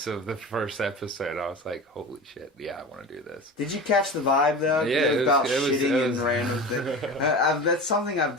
of the first episode. I was like, holy shit, yeah, I want to do this. Did you catch the vibe though? Yeah, it was about it was, shitting it was, and random things. That's something I've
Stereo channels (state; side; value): normal; both; correlation 0.31